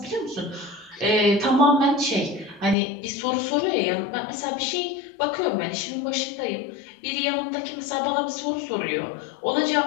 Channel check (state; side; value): drops out; right; at 2.8 s